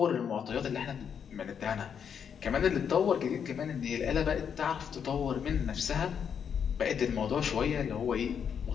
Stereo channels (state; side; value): quieter; right; 7.5 dB